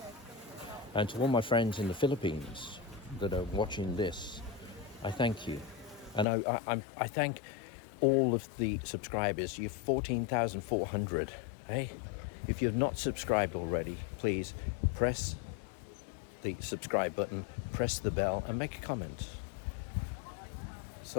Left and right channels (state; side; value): drops out; right; at 6.2 s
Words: And to all my friends in the Philippines that are watching this, I thank you. And I thank all of the subscribers. You're 14,400. Hey, if you've not subscribed already, please press the subscribe button, press the bell, and make a comment.